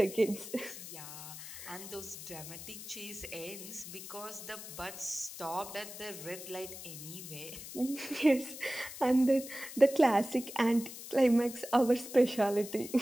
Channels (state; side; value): noise; left; hiss, 11 dB below the sound